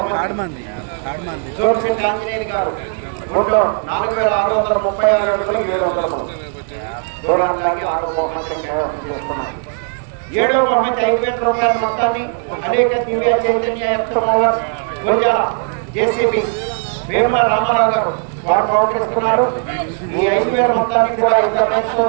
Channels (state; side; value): silent; left; 57 dB below the other